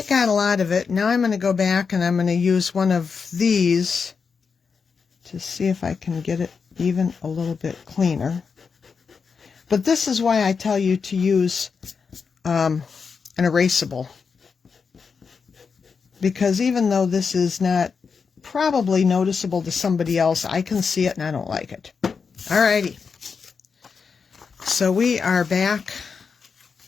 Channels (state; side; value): quieter; right; 5.5 dB